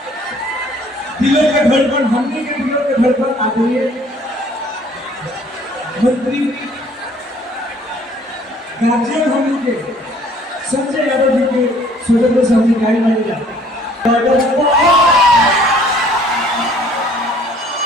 दिलों के धड़कन, हमने के दिलों के धड़कन आ गई है। मंत्री गार्जियन होने के संजय यादव जी के स्वतंत्र सामने गाड़ी मारेगा।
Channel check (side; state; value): both; normal; correlation 0.57